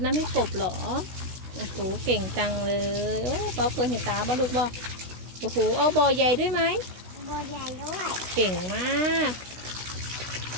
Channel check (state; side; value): late; left; 16 ms